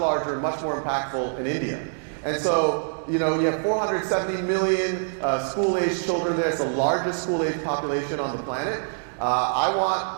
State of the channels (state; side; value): silent; left; digital silence